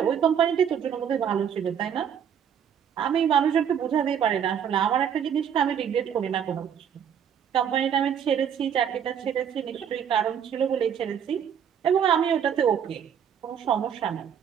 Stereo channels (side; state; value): left; quieter; 8.4 dB